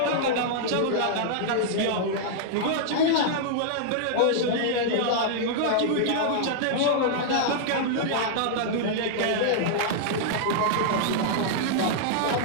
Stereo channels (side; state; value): both; different; correlation -0.01